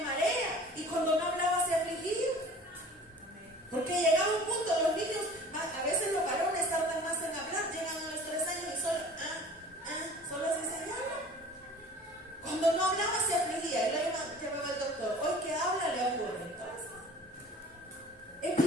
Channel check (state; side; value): normal; both; correlation 0.45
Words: marea. Y cuando no hablaba se afligía. Porque llegaba un punto, los niños, a veces los varones tardan más en hablar, llegan a los 3 años y solo así se llama. Cuando no hablaba se afligía, y lo llevaba el doctor. Hoy que habla le ocurre. Entonces, es